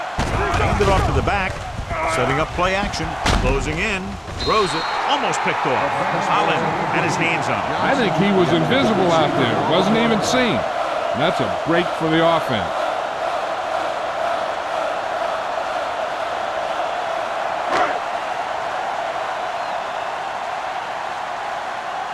Hand it off to the back, setting up play action, closing in, throws it, almost picked off. Holland had his hands on it. I think he was invisible out there. Wasn't even seen. And that's a break for the offense.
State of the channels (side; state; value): both; identical; correlation 1.00